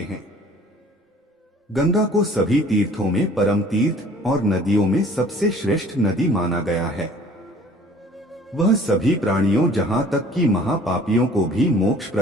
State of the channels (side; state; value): both; normal; correlation 0.51